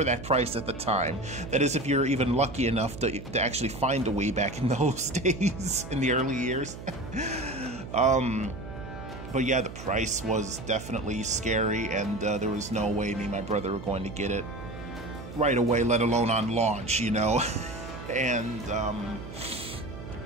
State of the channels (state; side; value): noise; right; hum, 12 dB below the sound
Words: that price at the time. That is, if you're even lucky enough to actually find a Wii back in those days, in the early years. But yeah, the price was definitely scary, and there was no way me and my brother were going to get it right away, let alone on launch, you know. And